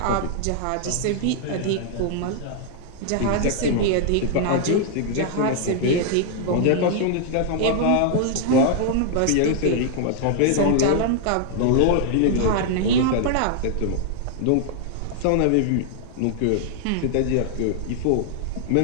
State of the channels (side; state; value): both; different; correlation 0.00